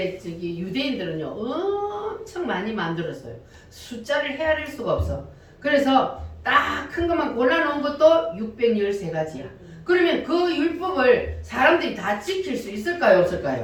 유대인들은요 엄청 많이 만들었어요. 숫자를 헤아릴 수가 없어. 그래서 딱 큰 것만 골라놓은 것도 613가지야. 그러면 그 율법을 사람들이 다 지킬 수 있을까요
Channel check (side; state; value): both; identical; correlation 1.00